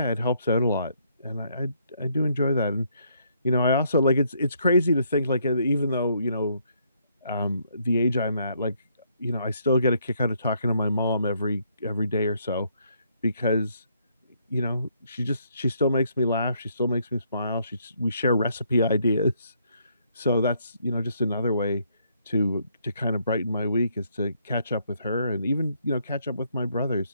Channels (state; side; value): inverted; both; correlation -0.71